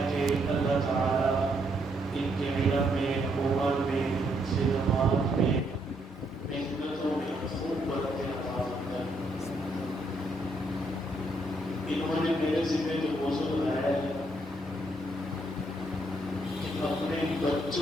کہ اللہ تعالیٰ ان کے علم میں، عمر میں، خدمات میں، محنتوں میں خوب برکت عطا فرمائے. انہوں نے میرے ذمہ جو موضوع لایا ہے اپنے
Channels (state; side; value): normal; both; correlation 0.74